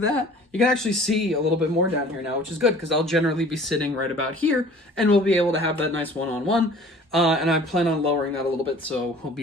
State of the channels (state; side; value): normal; both; correlation 0.48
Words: that. You can actually see a little bit more down here now, which is good, because I'll generally be sitting right about here, and we'll be able to have that nice one-on-one, and I plan on lowering that a little bit, so we'll